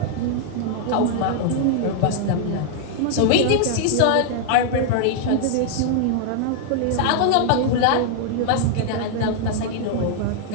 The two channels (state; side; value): different; both; correlation 0.00